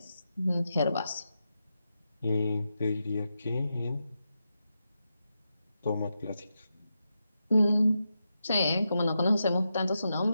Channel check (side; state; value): both; inverted; correlation -0.87